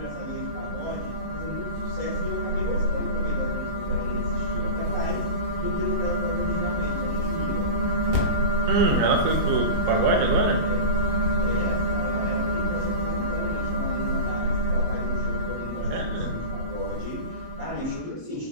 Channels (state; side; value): late; left; 22 ms